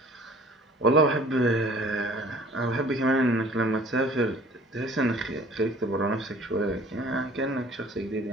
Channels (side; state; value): both; normal; correlation 0.50